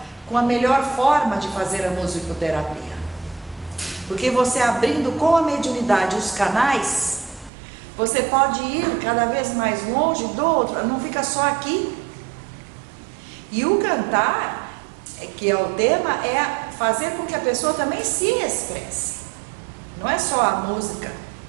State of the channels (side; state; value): left; drops out; at 7.5 s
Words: com a melhor forma de fazer a musicoterapia. Porque você abrindo com a mediunidade os canais, você pode ir cada vez mais longe do outro, não fica só aqui. E o cantar, que é o tema, é fazer com que a pessoa também se expresse. Não é só a música